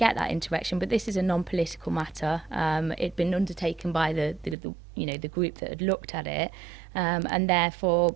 that interaction, but this is a non-political matter. It'd been undertaken by the group that had looked at it, and therefore,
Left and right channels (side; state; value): left; drops out; at 4.5 s